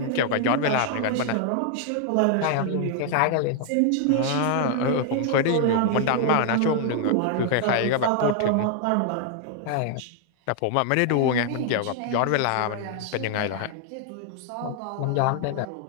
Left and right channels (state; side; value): different; both; correlation 0.00